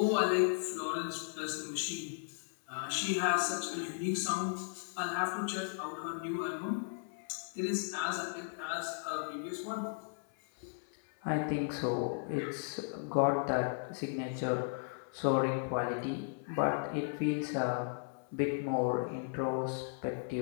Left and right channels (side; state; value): right; silent; 54 dB below the other